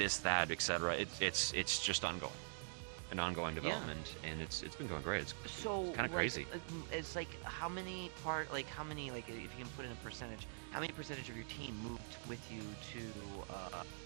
that, etc. It's just ongoing development, and it's been going great. It's So kind of crazy. It's like how many like if you can put in a percentage, how many percentage of your team moved with you to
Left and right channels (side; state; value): left; silent; digital silence